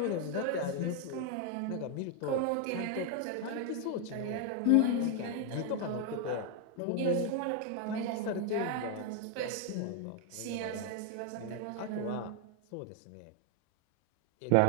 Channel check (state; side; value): different; both; correlation 0.01